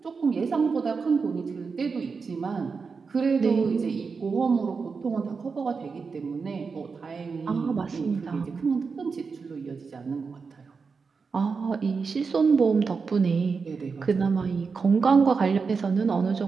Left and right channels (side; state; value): left; quieter; 5.1 dB